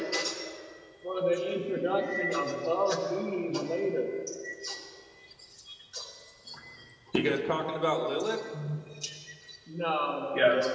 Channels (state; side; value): identical; both; correlation 1.00